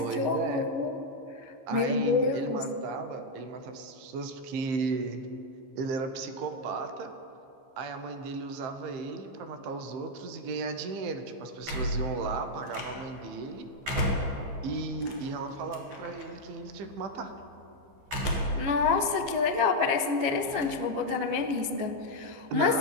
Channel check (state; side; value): late; left; 15 ms